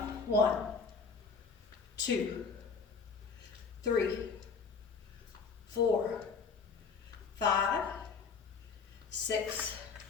1, 2, 3, 4, 5, 6,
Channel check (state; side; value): quieter; right; 5.3 dB